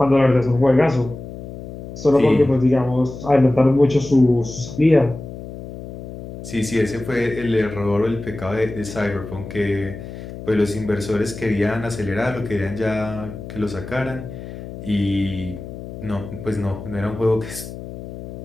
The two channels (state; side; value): noise; left; hum, 12 dB below the sound